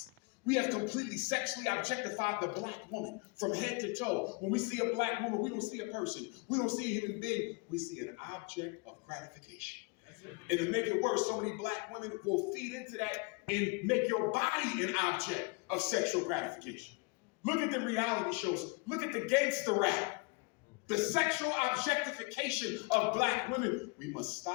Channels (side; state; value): right; quieter; 30.0 dB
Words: We have completely sexually objectified the black woman from head to toe. When we see a black woman, we don't see a person. We don't see a human being. We see an object of gratification. And to make it worse, so many black women will feed into that and make your body an object of sexual gratification. Look at the reality shows. Look at the gangster rap. The sexual objectification of black women. We must